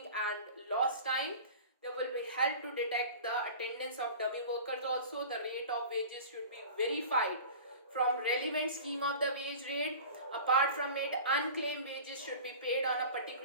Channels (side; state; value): both; inverted; correlation -0.38